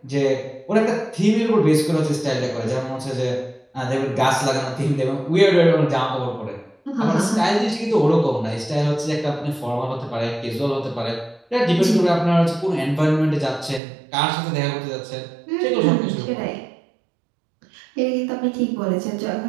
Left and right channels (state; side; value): drops out; left; at 13.8 s